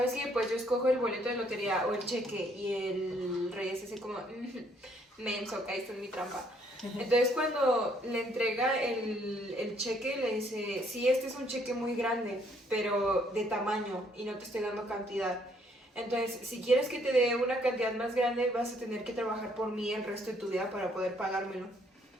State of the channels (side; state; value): both; normal; correlation 0.67